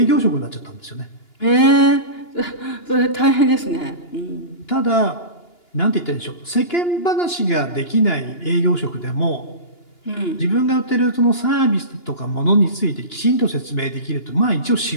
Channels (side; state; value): right; late; 2.9 ms